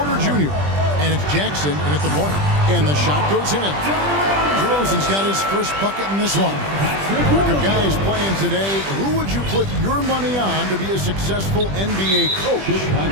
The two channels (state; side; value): late; left; 20 ms